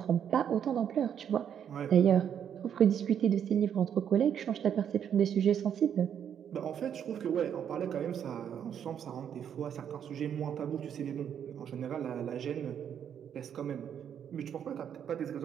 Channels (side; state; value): left; quieter; 8.8 dB